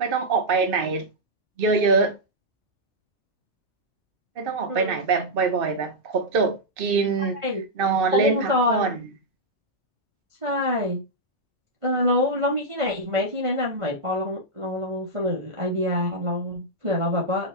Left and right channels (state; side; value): normal; both; correlation -0.07